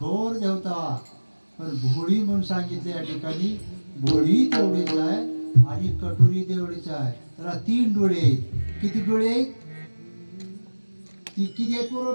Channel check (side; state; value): both; inverted; correlation -1.00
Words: देवता. पण भोळी म्हणून सांगितले या ठिकाणी. भोळी तेवढीच आहे आणि कटोरी तेवढीच आहे. त्याला 3 डोळे आहेत. किती डोळे आहेत? किती आहेत बरोबर